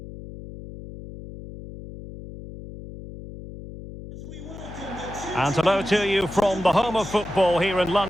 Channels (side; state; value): left; noise; hum, 13 dB below the sound